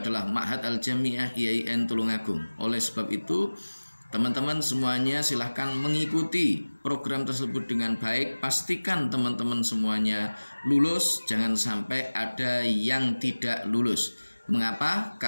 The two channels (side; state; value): both; inverted; correlation -1.00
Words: Ma'had Al-Jami'ah IAIN Tulungagung. Oleh sebab itu teman-teman semuanya silahkan mengikuti program tersebut dengan baik. Pastikan teman-teman semuanya lulus, jangan sampai ada yang tidak lulus. Mengapa?